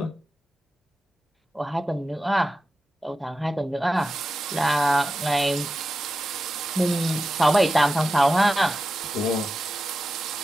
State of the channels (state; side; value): normal; both; correlation 0.92